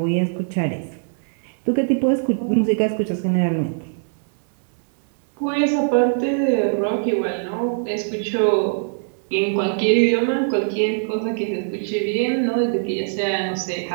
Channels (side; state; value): left; silent; 62 dB below the other